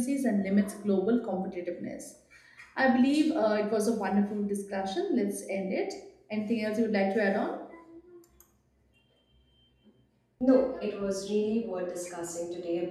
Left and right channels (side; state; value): both; identical; correlation 1.00